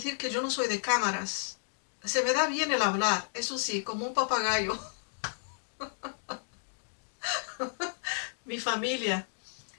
que yo no soy de cámaras. Se me da bien el hablar, eso sí, como un papagayo. Mi familia.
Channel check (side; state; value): right; silent; digital silence